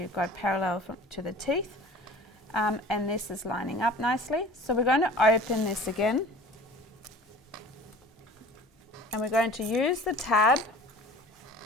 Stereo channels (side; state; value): both; normal; correlation 0.44